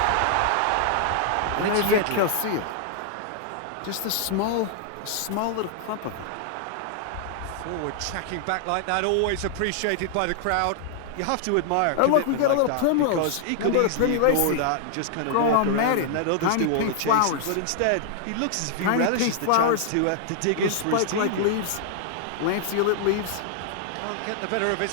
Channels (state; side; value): different; both; correlation 0.00